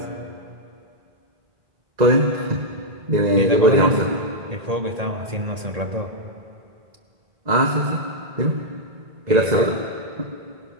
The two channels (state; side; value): late; left; 1.8 ms